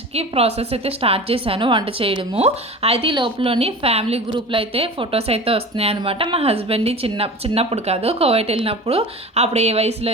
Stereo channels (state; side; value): normal; both; correlation 0.35